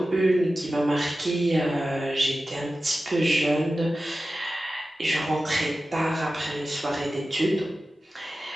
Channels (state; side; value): normal; both; correlation 0.94